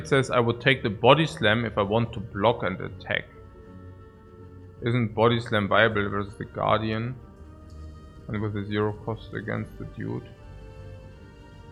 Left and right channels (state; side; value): identical; both; correlation 1.00